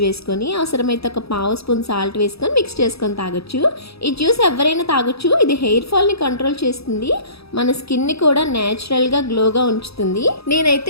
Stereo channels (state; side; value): late; right; 0.77 ms